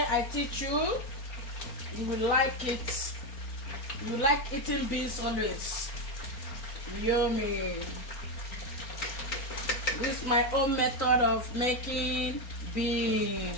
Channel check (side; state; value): right; late; 4.3 ms